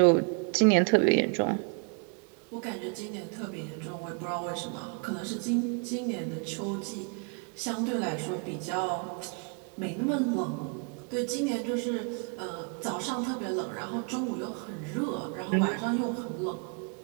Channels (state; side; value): quieter; left; 36.9 dB